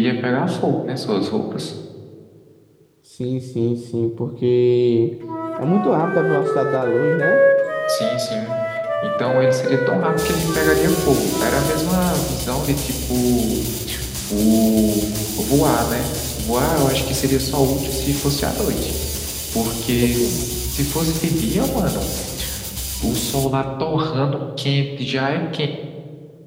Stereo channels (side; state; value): both; identical; correlation 1.00